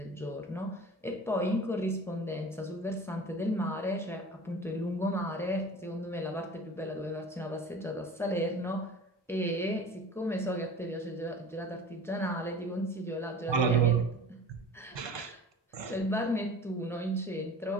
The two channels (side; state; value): both; normal; correlation 0.40